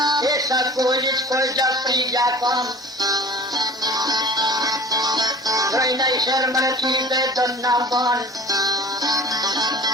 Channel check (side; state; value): both; normal; correlation 0.42